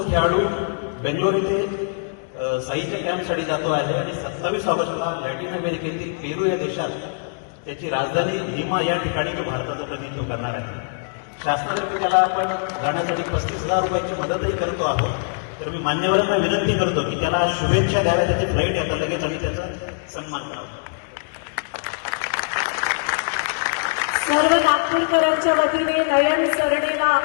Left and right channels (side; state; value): right; silent; digital silence